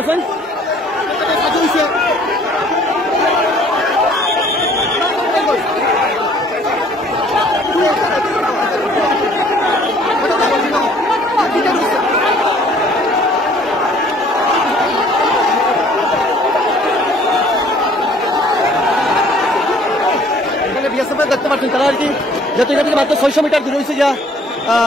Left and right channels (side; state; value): both; normal; correlation 0.56